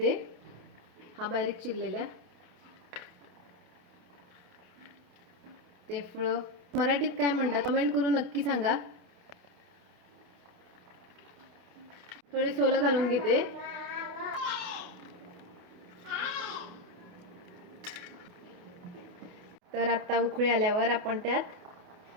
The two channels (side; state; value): left; late; 28 ms